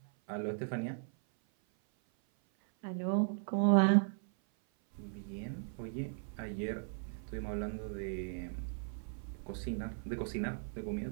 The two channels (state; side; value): silent; left; 53 dB below the other